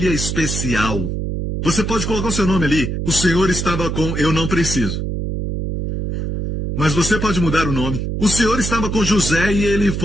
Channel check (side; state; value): right; noise; hum, 3 dB below the sound